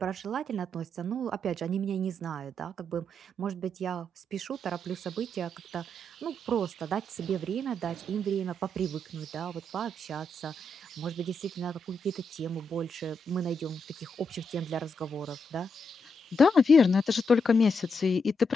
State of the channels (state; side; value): normal; both; correlation 0.81